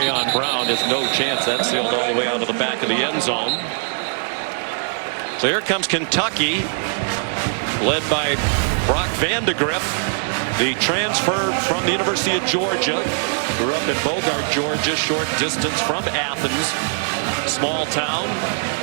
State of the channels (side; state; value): left; silent; 63 dB below the other